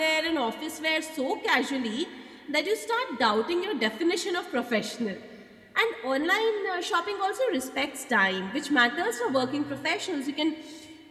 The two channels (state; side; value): identical; both; correlation 1.00